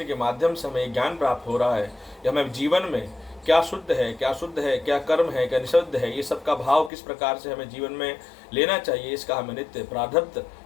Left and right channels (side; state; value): right; drops out; at 6.9 s